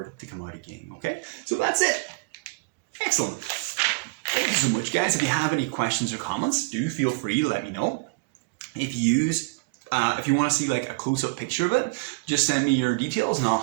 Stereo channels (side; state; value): left; quieter; 29.9 dB